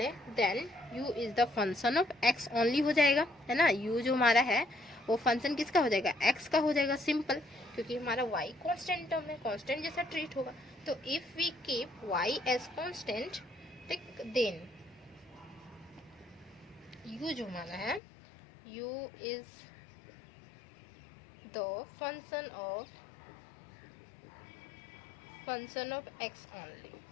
then u is the function of x only हो जाएगा, है ना। u जो हमारा है वो फंक्शन किसका हो जाएगा, x का हो जाएगा, सिंपल, क्योंकि हमारा y कांस्टेंट टर्म है, कांस्टेंट जैसा ट्रीट होगा। तो if we keep y as constant, then u जो हमारा है, u is the function of x only.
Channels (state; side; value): drops out; right; at 18.0 s